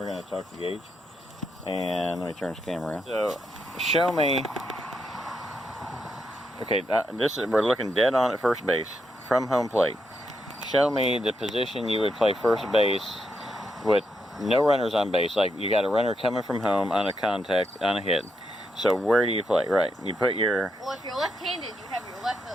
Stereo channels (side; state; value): both; normal; correlation 0.81